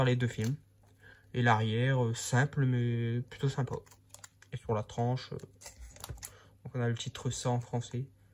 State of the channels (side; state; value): both; identical; correlation 1.00